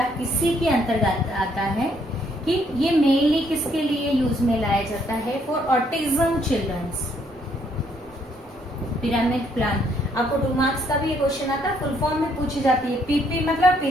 इसी के अंतर्गत आता है कि ये मेनली किसके लिए यूज में लाया जाता है? For autism childrens. Pyramid plan आपको 2 मार्क्स का भी ये क्वेश्चन आता है, फुल फॉर्म में पूछी जाती है। PP मतलब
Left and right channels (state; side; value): normal; both; correlation 0.69